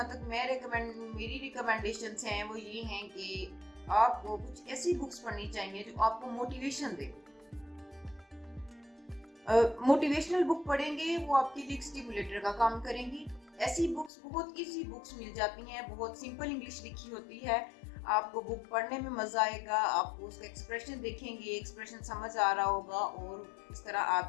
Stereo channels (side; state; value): right; drops out; at 14.1 s